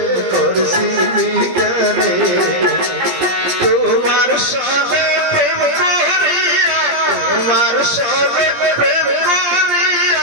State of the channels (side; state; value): left; late; 17 ms